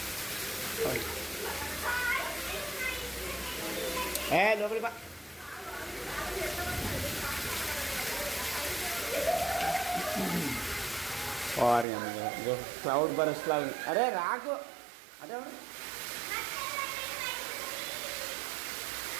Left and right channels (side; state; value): left; drops out; at 11.9 s